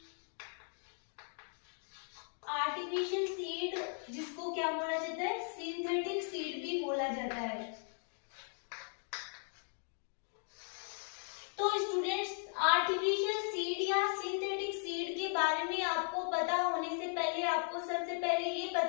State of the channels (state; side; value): silent; right; 53 dB below the other